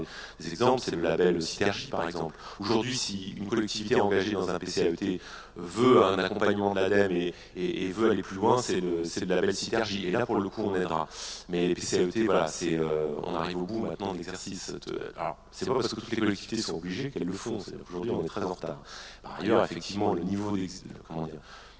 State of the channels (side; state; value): both; identical; correlation 1.00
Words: des exemples, c'est le label Synergie par exemple. Aujourd'hui, si une collectivité engagée dans un PCAET veut un accompagnement de l'ADEME et veut aller plus loin, c'est le label Synergie. Et là, pour le coup, on aidera. Mais les PCAET, voilà, on arrive au bout maintenant de l'exercice. Alors, c'est pas parce que toutes les collectivités sont obligées qu'elles le font. Aujourd'hui, on est très en retard. Par ailleurs, effectivement, le niveau